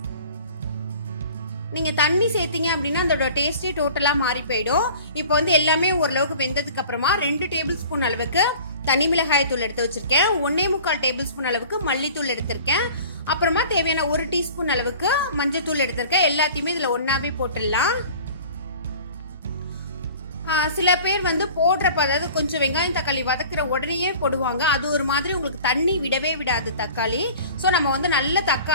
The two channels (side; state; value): both; inverted; correlation -0.44